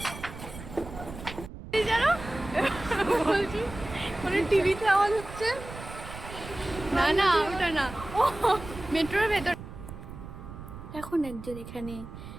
জানো বলছি মানে টিভিতে আওয়াজ হচ্ছে। না না ওটা না, মেট্রোর ভেতর। এখন একজন এখানে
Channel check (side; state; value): right; noise; rumble, 12 dB below the sound